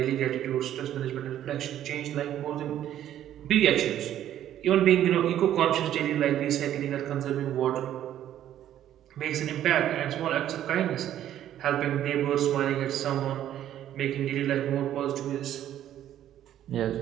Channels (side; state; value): left; quieter; 11.5 dB